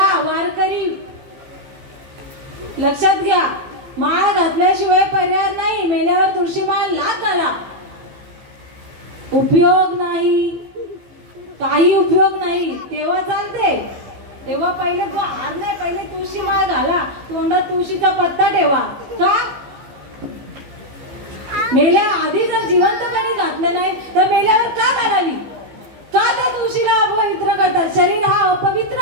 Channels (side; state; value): left; late; 15 ms